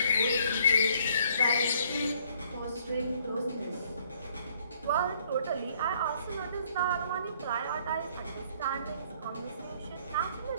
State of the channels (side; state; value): both; inverted; correlation -0.63